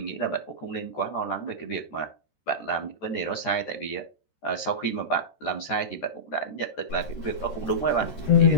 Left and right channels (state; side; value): late; right; 13 ms